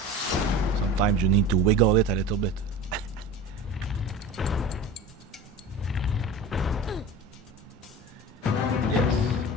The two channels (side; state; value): both; normal; correlation 0.34